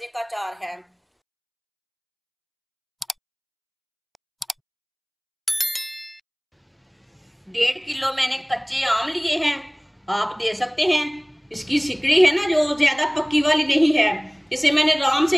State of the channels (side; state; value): both; identical; correlation 1.00